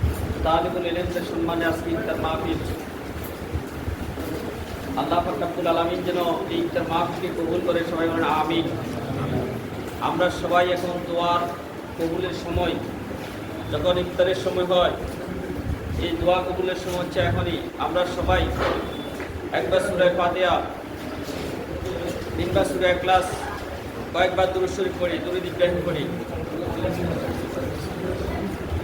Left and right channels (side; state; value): both; identical; correlation 1.00